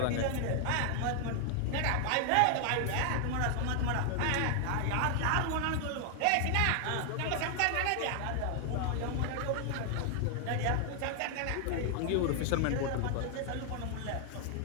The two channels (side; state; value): both; different; correlation 0.00